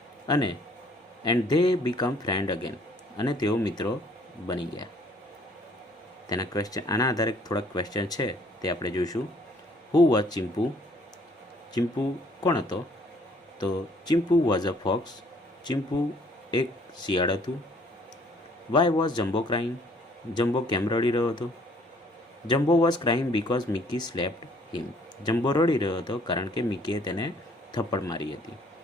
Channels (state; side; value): normal; both; correlation 0.60